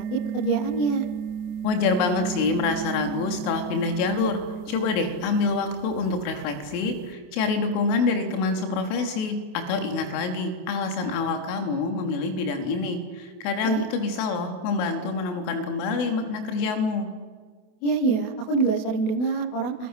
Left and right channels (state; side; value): late; right; 28 ms